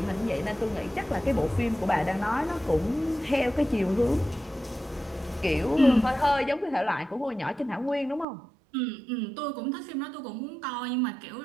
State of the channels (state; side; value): drops out; left; at 8.2 s